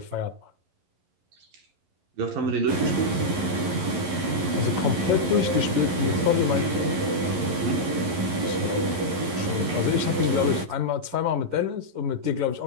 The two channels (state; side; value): late; left; 11 ms